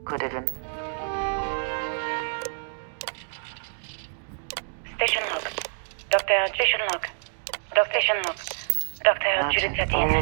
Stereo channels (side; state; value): left; silent; digital silence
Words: could even. Station log. Station log. Station log. Dr. Judith Imagine Etienne.